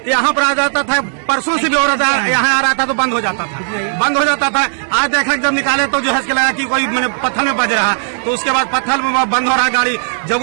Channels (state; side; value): silent; left; 70 dB below the other